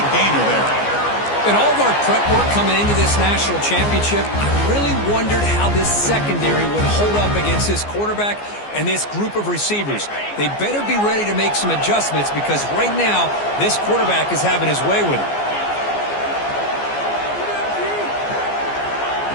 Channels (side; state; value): right; late; 14 ms